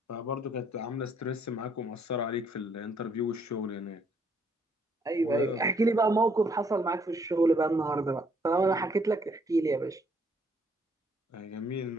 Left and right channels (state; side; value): normal; both; correlation 0.68